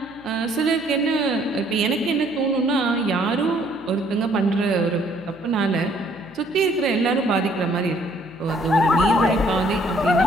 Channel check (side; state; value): left; noise; hum, 26 dB below the sound